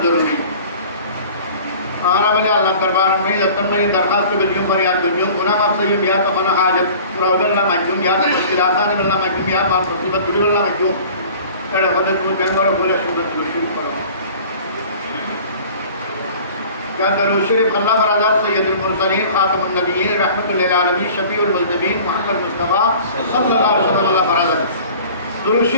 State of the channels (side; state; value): both; inverted; correlation -0.45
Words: ضروری آنا بلے اللہ دربار میں دتن میں درخواست بلیوں فریاد بلیوں گناہ ماب سیم یا تو خنا حاجت قرآن اللہ مجھوم یا تو مشکل آسان اللہ مجھوم یا مان مصیبت بلی اللہ مجھوم اڑے خود کو جنگل بولے سنت جو شروع کرو کیا درود شریف اللہ برادر سید المرسلین خاتم النبیین رحمت للعالمین شفیع المذنبین محمد مصطفی صلی اللہ علیہ وسلم اللہ برادر درود